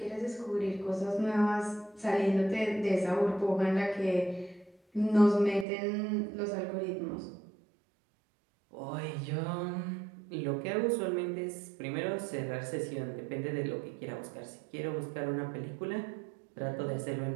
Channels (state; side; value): drops out; left; at 5.7 s